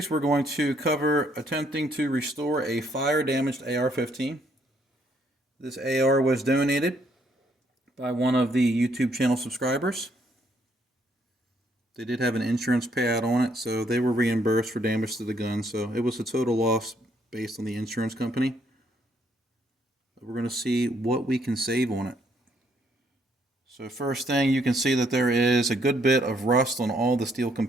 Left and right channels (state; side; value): normal; both; correlation 0.70